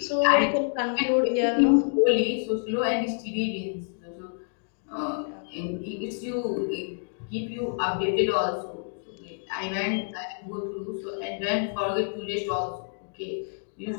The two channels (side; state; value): right; silent; digital silence